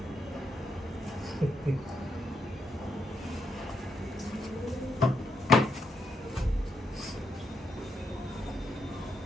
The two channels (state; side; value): normal; both; correlation 0.79